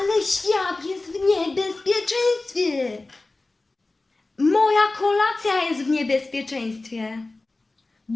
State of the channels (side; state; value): right; quieter; 3.2 dB